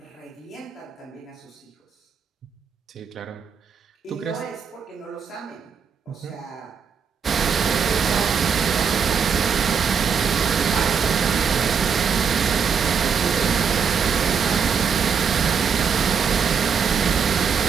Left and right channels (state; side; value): quieter; left; 6.4 dB